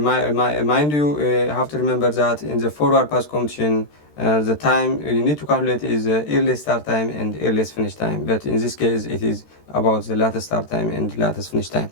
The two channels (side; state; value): right; late; 13 ms